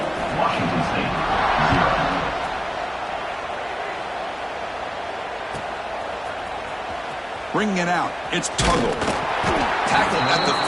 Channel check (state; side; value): identical; both; correlation 1.00